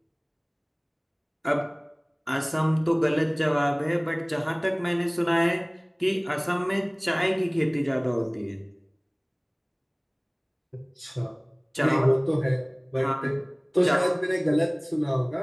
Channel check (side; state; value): both; identical; correlation 1.00